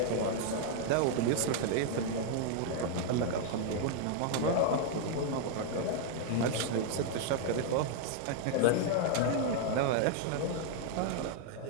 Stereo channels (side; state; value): both; different; correlation 0.00